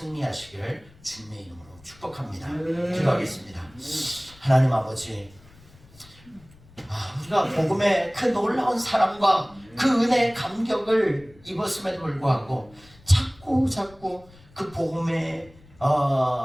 주님의 이름으로 축복합니다. 기도하겠습니다. 하나님 아버지, 우리가 복음의 그 놀라운 사랑과 그 은혜의 감격을 입었음에도 불구하고 자꾸 그 복음이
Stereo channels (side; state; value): left; noise; rumble, 25 dB below the sound